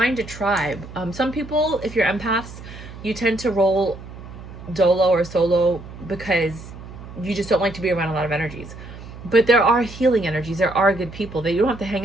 a tribe. Some people, if you're empaths, you tend to roll dolo or solo because you just don't like to be around a lot of energies. But there are healing energies. There are good people that you don't have to hang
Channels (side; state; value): right; noise; hum, 14 dB below the sound